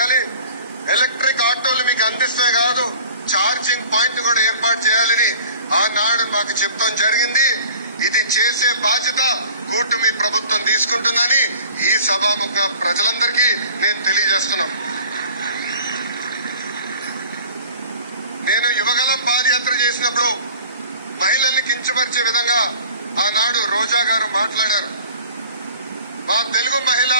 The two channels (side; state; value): both; inverted; correlation -0.46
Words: ఎలక్ట్రిక్ ఆటోలు మీకు అందిస్తే కాదు, ఛార్జింగ్ పాయింట్ కూడా ఏర్పాటు చేయాలని ఆనాడు మాకు చెప్తాం జరిగింది. ఇది చేసే బాధ్యత కూటమి ప్రభుత్వం తీసుకుంటుందని ఈ సభాముఖ ప్రజలందరికీ నేను తెలియజేస్తున్నాం. నేను యువగలం పాదయాత్ర చేసినప్పుడు మహిళల్ని కించపరిచే విధంగా ఆనాడు రోజా గారు మాట్లాడారు. మా తెలుగు మహిళ